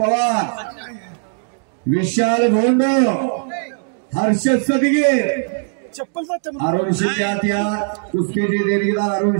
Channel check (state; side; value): silent; left; digital silence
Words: विशाल भोंड, हर्ष सदगीर अरुण शिंदे आत या. कुस्तीचे देणगीदार अरुण